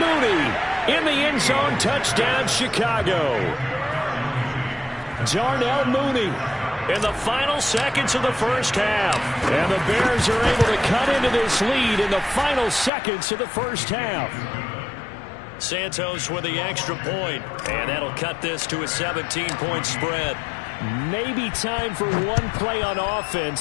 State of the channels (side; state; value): right; drops out; at 12.9 s